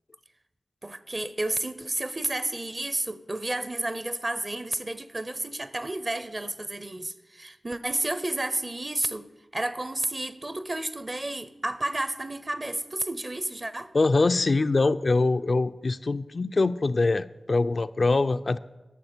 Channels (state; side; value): normal; both; correlation 0.97